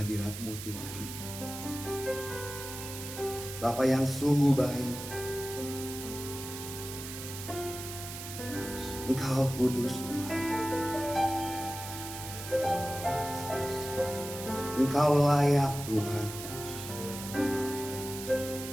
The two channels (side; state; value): right; noise; hiss, 9 dB below the sound